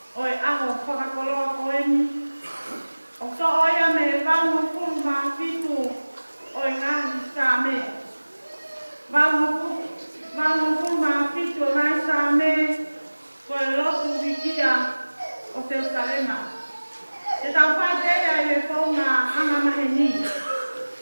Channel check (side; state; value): both; inverted; correlation -1.00